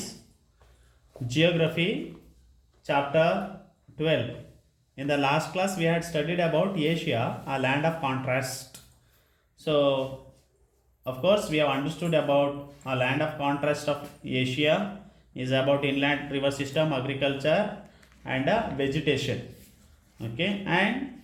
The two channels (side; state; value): both; identical; correlation 1.00